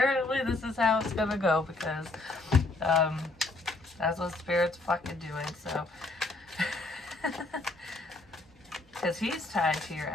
this is how it's gonna go, because that's what Spirit's fucking doing, so. Because he's tied to your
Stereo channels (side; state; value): right; quieter; 3.0 dB